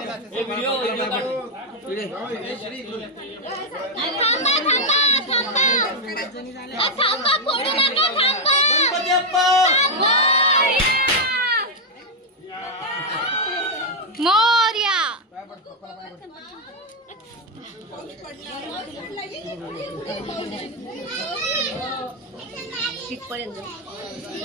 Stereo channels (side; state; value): both; normal; correlation 0.01